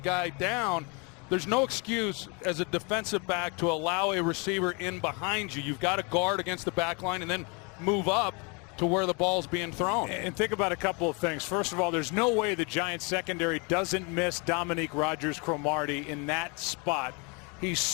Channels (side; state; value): right; quieter; 31.7 dB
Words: down. There's no excuse as a defensive back to allow a receiver in behind you. You've got to guard against the back line and then move up to where the ball's being thrown. And think about a couple of things. First of all, there's no way the Giants secondary doesn't miss Dominique Rodgers-Cromartie in that spot. He's